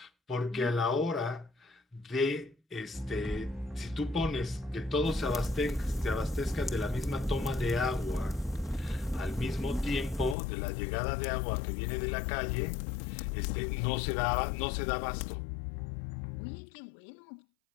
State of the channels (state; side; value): drops out; right; at 10.4 s